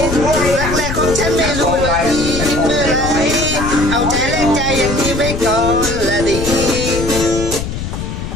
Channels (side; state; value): left; noise; rumble, 5 dB below the sound